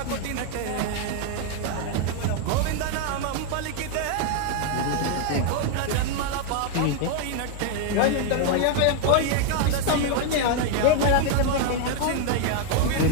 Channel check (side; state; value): both; different; correlation 0.01